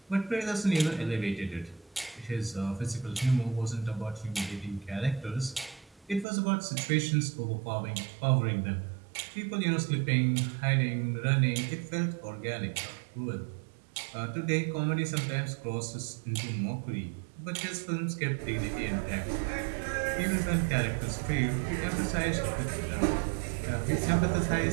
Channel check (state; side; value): drops out; left; at 6.2 s